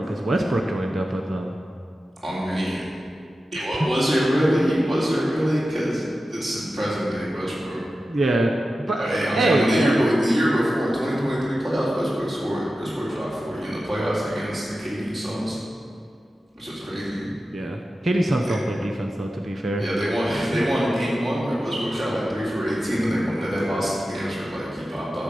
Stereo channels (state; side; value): normal; both; correlation 0.93